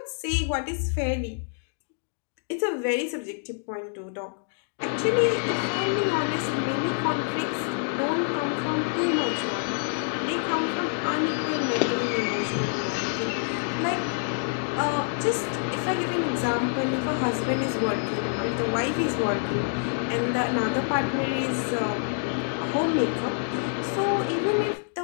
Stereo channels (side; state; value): right; silent; digital silence